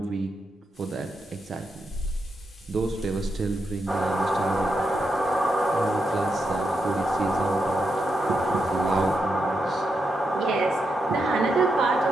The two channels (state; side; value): normal; both; correlation 0.84